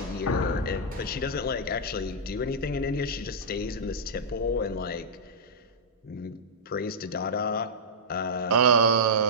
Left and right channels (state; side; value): normal; both; correlation -0.11